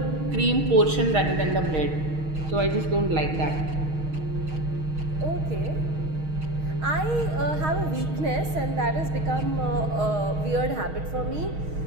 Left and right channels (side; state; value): left; late; 6.4 ms